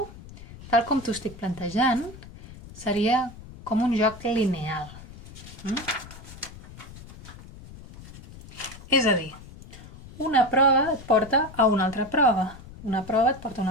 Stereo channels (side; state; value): left; noise; rumble, 17 dB below the sound